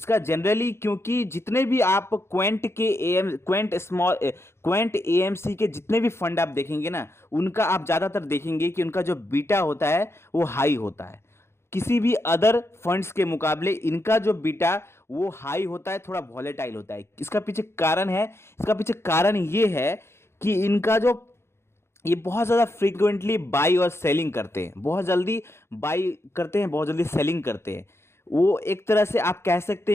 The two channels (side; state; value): right; late; 0.12 ms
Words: जनरली क्योंकि जितने भी आप क्वेंट एएमसी के जितने भी फंड आप देखेंगे ना, उनका आप ज़्यादातर देखेंगे कि उनका जो बीटा होता है वो हाई होता है। किसी भी अदर फंड्स के मुकाबले इनका जो बीटा वो हाई होता है, थोड़ा वॉलेटाइल होता है। इसका पीछे कारण है, इसका पीछे कारण ये है कि इनका जो, ये बहुत ज़्यादा फ्रीक्वेंटली बाई और सेलिंग करते हैं, बहुत जल्दी बाई करते हैं, बहुत जल्दी सेलिंग करते हैं। वो एक तरह से आप कह सकते